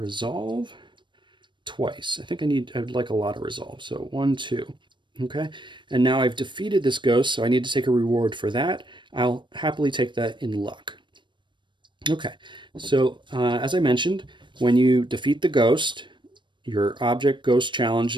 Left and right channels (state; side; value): late; left; 0.23 ms